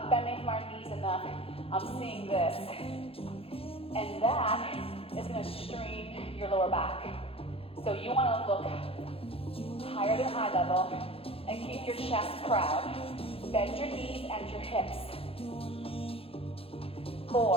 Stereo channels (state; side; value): late; right; 0.27 ms